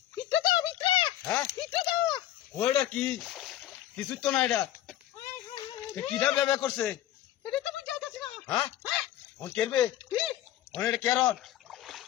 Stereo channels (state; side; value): quieter; right; 13.0 dB